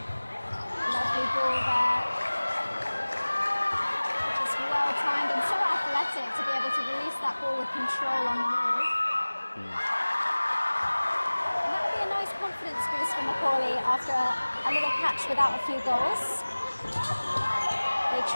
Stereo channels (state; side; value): inverted; both; correlation -1.00